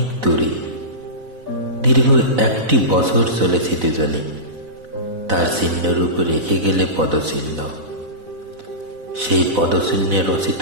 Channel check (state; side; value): late; left; 4.0 ms